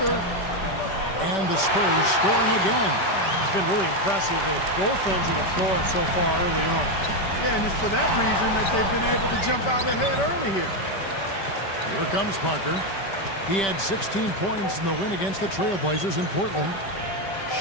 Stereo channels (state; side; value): late; right; 5.2 ms